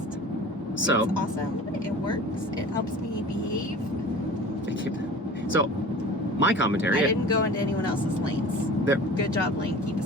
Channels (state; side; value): normal; both; correlation 0.40